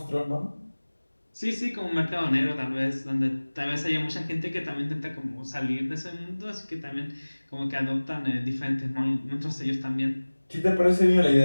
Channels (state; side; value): inverted; both; correlation -1.00